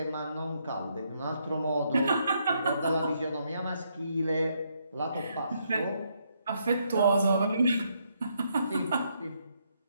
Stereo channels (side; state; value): both; inverted; correlation -0.75